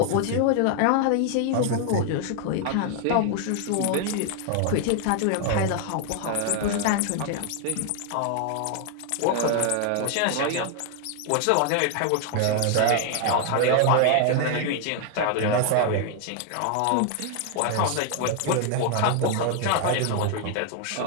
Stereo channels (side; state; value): both; different; correlation 0.00